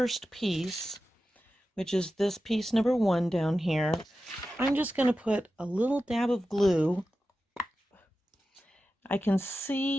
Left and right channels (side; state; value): both; normal; correlation 0.93